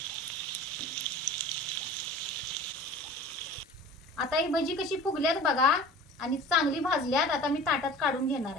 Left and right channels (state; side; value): normal; both; correlation 0.41